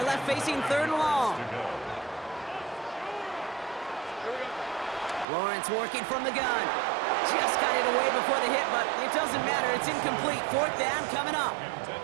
left facing 3rd and long. Lawrence working from the gun. Just got it away before the hit, but it doesn't matter. It's incomplete. 4th down coming up.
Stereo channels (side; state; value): left; drops out; at 5.2 s